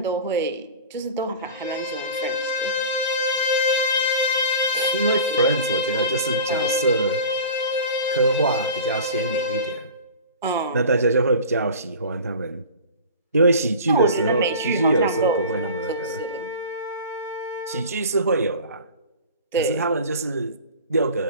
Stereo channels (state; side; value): inverted; both; correlation -0.38